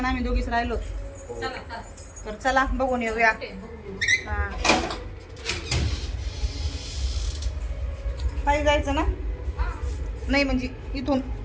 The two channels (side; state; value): both; identical; correlation 1.00